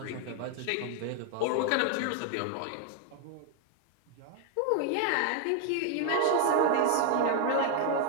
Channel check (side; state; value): both; different; correlation 0.00